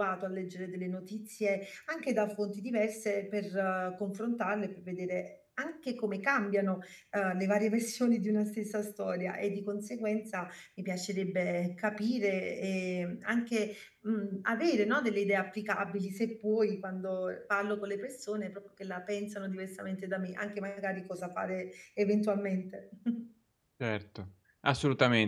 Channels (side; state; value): both; identical; correlation 1.00